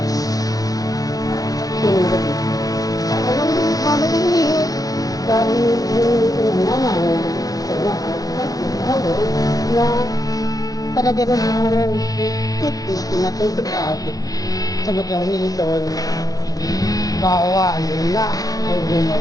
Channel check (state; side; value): late; right; 0.18 ms